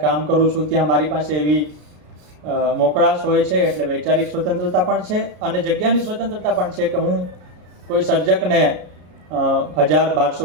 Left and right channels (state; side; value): late; left; 33 ms